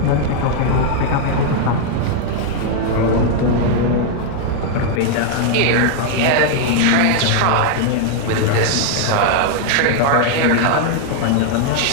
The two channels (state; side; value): different; both; correlation 0.00